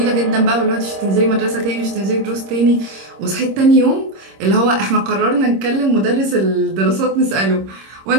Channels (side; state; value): left; late; 26 ms